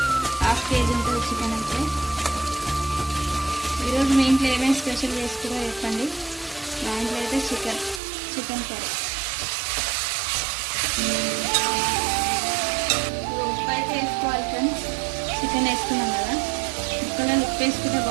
1/2 kg ఉంటుంది చికెన్ అయితే. ఈరోజు మీ ఇంట్లో ఏమేమి స్పెషల్ చేసుకురో చెప్పండి. మా ఇంట్లో అయితే చికెన్ కర్రీ. ఉప్పు అయితే వేసుకోవాలి ఫ్రెండ్స్. చికెన్ వేసుకున్నాం కదా, ముక్కలలో ఉప్పు వేసుకుంటే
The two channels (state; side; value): drops out; left; at 8.0 s